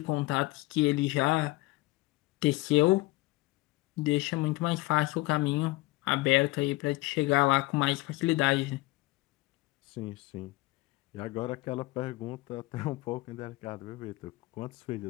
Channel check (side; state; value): right; quieter; 20.8 dB